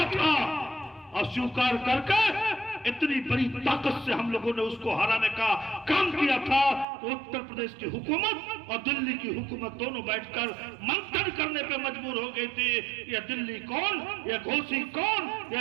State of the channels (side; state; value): left; drops out; at 6.9 s